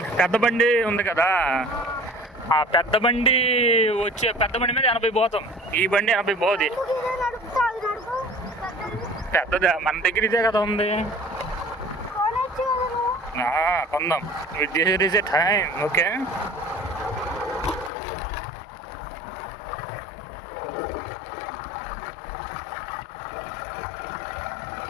పెద్ద బండి ఉంది కదా, ఆ పెద్ద బండి మీద 80 పోతాం, ఈ బండి 80 పోదు. పెద్దదా మన దగ్గర ఇదే కదా ఉంది, కొందాం. This is a time, okay?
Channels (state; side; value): drops out; right; at 17.9 s